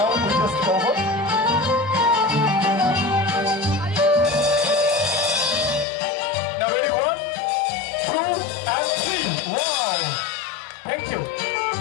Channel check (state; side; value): drops out; right; at 5.9 s